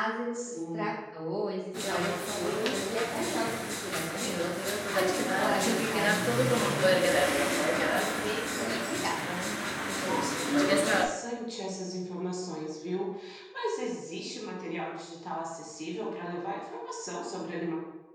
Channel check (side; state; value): both; identical; correlation 1.00